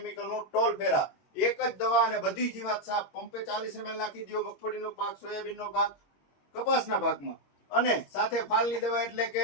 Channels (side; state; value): right; late; 21 ms